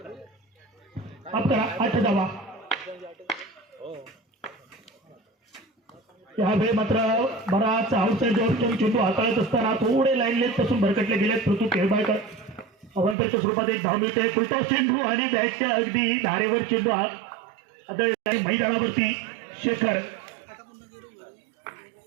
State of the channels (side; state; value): left; drops out; at 13.2 s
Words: आपला 8 धावा. यावेळी मात्र बराच आउटसाइड चेंडू हाताळत असताना थोडे लाईन लेट पासून भरकटले गेले. पृथ्वी खेळबाळकर अवंतरच्या स्वरूपात 1 धाव मिळते. फुलटॉस चेंडू आणि बॅटच्या अगदी धारेवर चेंडू आदळला मैदानावरती. शेखर